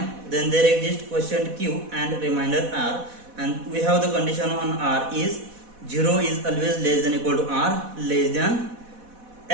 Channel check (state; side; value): late; left; 4.1 ms